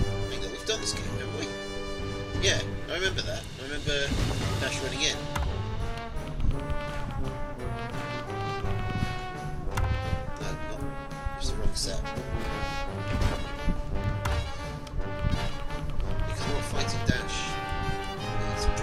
think that we've done this game, haven't we? Yeah, I remember that. I remember Dash running in. No, not. It's the wrong set. Because we're not fighting Dash. It's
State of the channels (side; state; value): both; identical; correlation 1.00